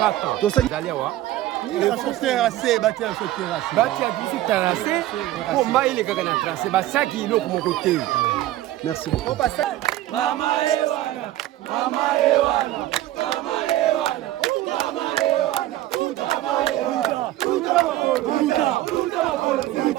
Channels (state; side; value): quieter; left; 14.8 dB